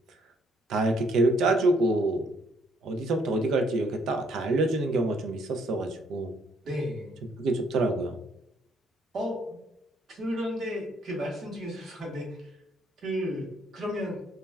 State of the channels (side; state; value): both; normal; correlation 0.68